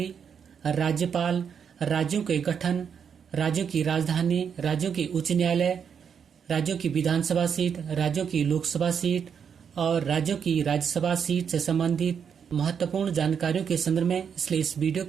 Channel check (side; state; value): left; quieter; 7.3 dB